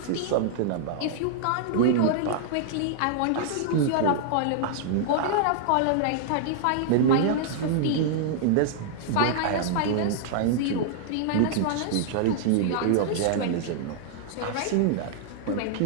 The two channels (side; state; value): both; different; correlation -0.01